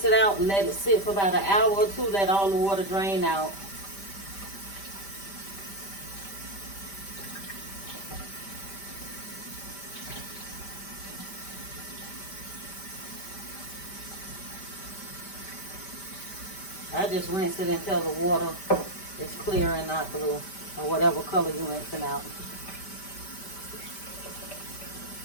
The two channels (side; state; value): right; late; 5.1 ms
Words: it out, let it sit for about an hour or two, let all the water drain out. I just rinse it until the water is clear and not blue, or whatever color you're rinsing out.